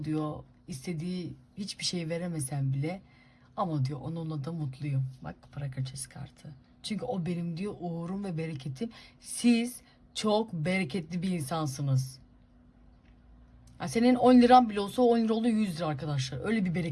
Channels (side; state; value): both; identical; correlation 1.00